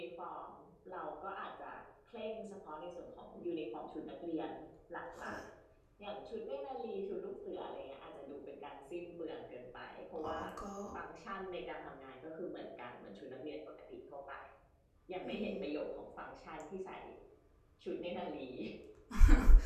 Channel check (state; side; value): identical; both; correlation 1.00